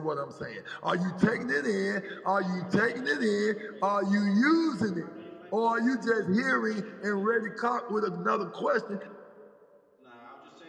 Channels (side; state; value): both; identical; correlation 1.00